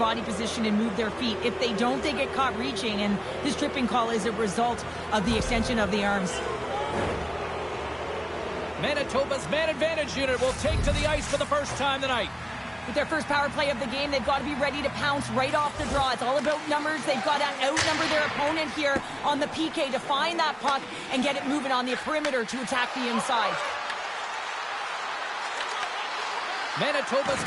position and move their feet. If they don't, they get caught reaching, and this tripping call is a result of the extension of the arms. Manitoba's man advantage unit will take to the ice for the first time tonight. With their first power play of the game, they've got to be ready to pounce right off the draw. It's all about numbers. They've got to outnumber their opponent here on the PK to find that puck and get it moving on the perimeter to attack the inside. Manitoba's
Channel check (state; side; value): identical; both; correlation 1.00